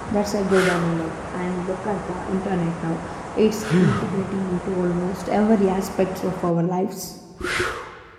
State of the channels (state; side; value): identical; both; correlation 1.00